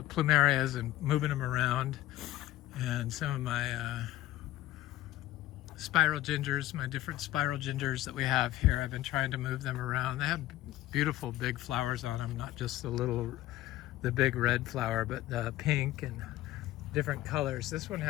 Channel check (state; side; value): quieter; right; 15.2 dB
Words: plumerias and moving them around, and some of my spiral gingers, my different spiral gingers that we have here, I've been trying to move them around. They have beautiful big flowers on them, not just the big red flower, but the pink and different colors. This one